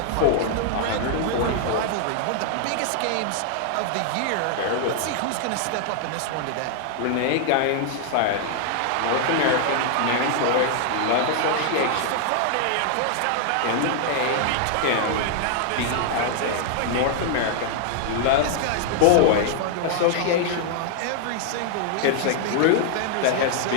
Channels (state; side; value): different; both; correlation -0.01